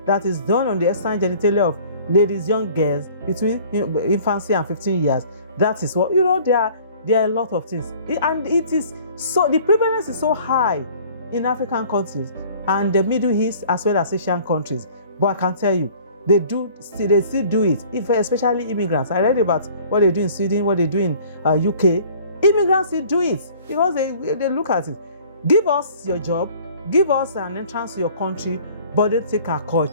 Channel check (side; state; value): both; inverted; correlation -0.51